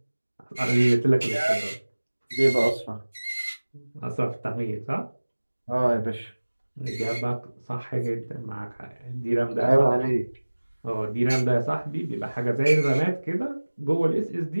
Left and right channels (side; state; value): both; inverted; correlation -1.00